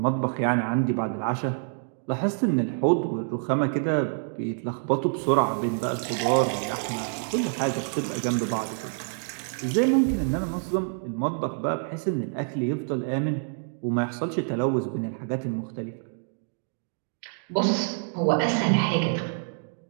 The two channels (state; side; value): silent; left; digital silence